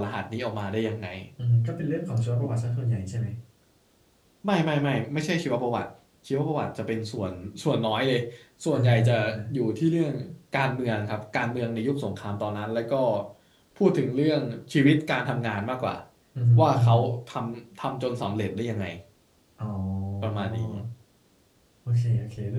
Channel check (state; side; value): identical; both; correlation 1.00